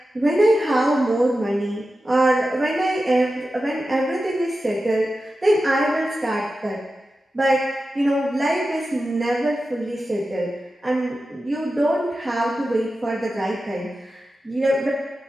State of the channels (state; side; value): normal; both; correlation 0.92